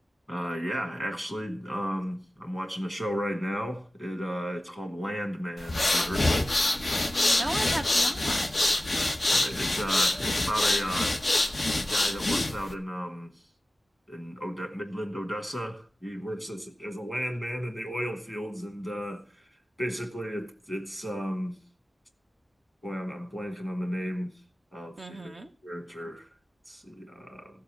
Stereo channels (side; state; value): both; normal; correlation 0.95